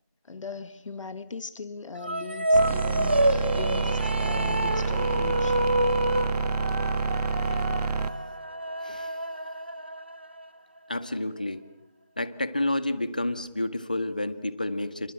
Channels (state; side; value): inverted; both; correlation -0.77